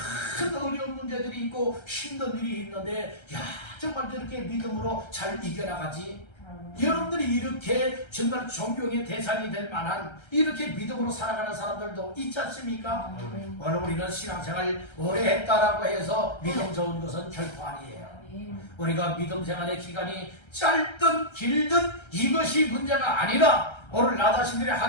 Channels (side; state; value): right; late; 1.3 ms